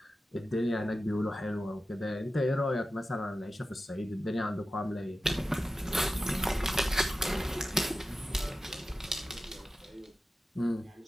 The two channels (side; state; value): both; normal; correlation 0.93